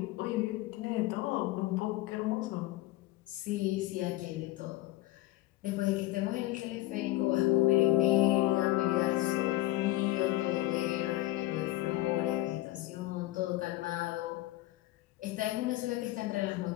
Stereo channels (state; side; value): quieter; right; 17.3 dB